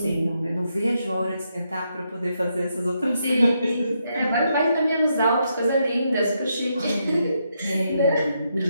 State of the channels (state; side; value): inverted; both; correlation -0.80